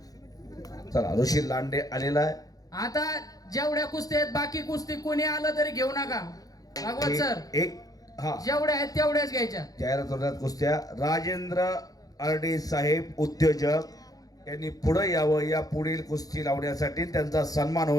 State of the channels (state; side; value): late; right; 0.18 ms